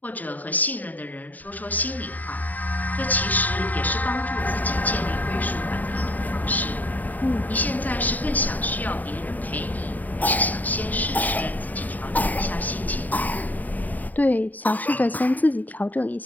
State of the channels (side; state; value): right; late; 0.082 ms